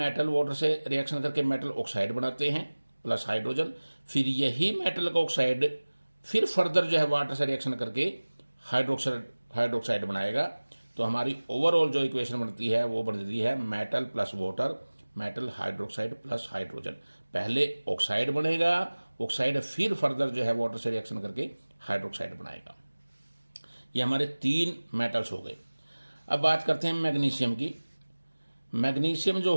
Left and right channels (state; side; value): inverted; both; correlation -1.00